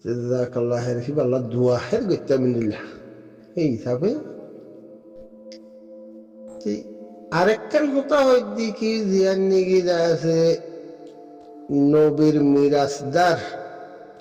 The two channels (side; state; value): both; identical; correlation 1.00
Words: জাযাকাল্লাহ খাইর ফি আল্লাহ দোয়া খাইর গইতা মিনিল্লাহ এই হিসাবে আরেকটার কথা হয় দেখি জিয়ান নিগি যা আছে নবীর মিরাজদার